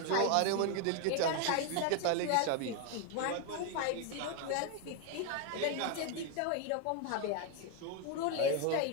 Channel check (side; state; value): both; different; correlation 0.01